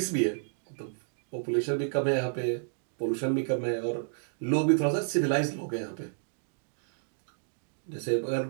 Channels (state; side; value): silent; left; digital silence